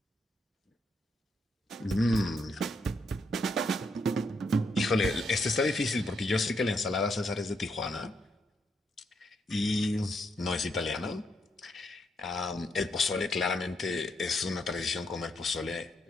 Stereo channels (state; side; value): normal; both; correlation 0.77